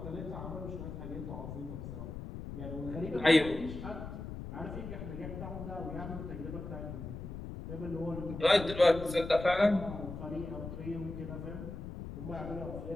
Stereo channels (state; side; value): noise; left; rumble, 8 dB below the sound